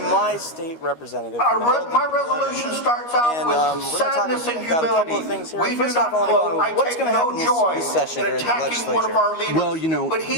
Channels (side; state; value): right; late; 13 ms